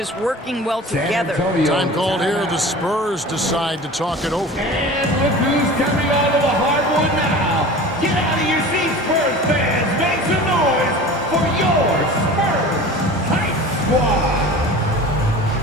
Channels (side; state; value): both; normal; correlation 0.38